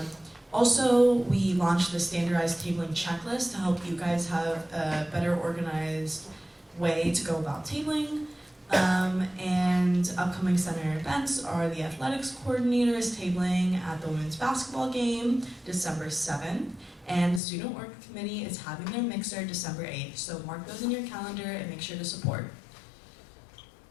Also, we launched the standardized tabling checklist to help you guys have a better organized way to go about tabling. And upcoming center events are the athletics coordinators tabling at the women's basketball game December 7th, and the student work committee is having their mixer December 8th. So mark those in your calendar and make sure to support.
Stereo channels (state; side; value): drops out; right; at 17.4 s